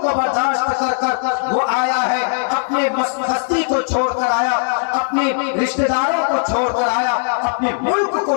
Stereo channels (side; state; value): right; silent; digital silence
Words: کو برداشت کر کر وہ آیا ہے، اپنے بستی کو چھوڑ کر آیا، اپنے رشتہ داروں کو چھوڑ کر آیا، اپنے ملک کو